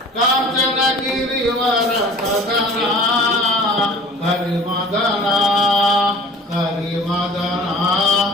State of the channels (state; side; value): normal; both; correlation 0.45